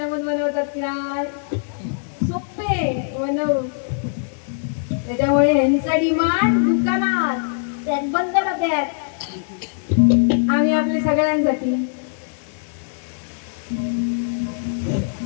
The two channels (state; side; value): silent; right; digital silence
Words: बनवतात. काय सोपे बनव. त्याच्यामुळे ह्यांचा डिमांड दुकानात त्यात बंद होत्यात. आम्ही आपल्या सगळ्यांसाठी